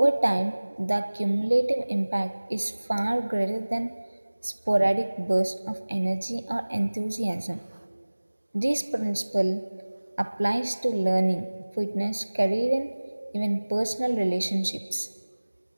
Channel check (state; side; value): inverted; both; correlation -1.00